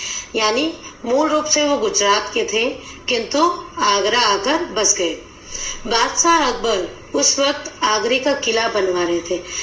यानी मूल रूप से वो गुजरात के थे, किंतु आगरा आकर बस गए। बादशाह अकबर उस वक्त आगरे का किला बनवा रहे थे।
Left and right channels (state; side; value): identical; both; correlation 1.00